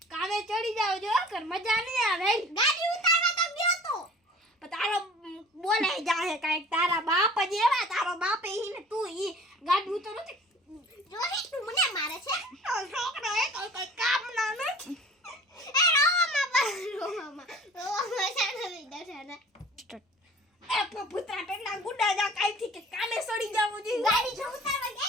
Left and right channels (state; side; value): normal; both; correlation 0.45